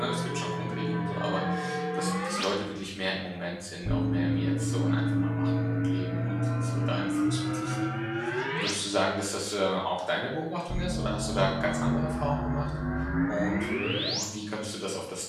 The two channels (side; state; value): both; identical; correlation 1.00